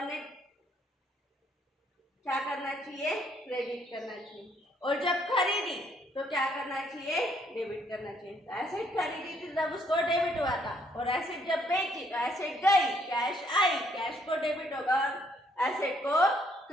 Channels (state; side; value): normal; both; correlation 0.68